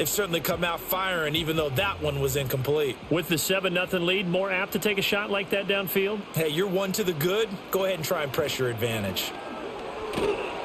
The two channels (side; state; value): both; identical; correlation 1.00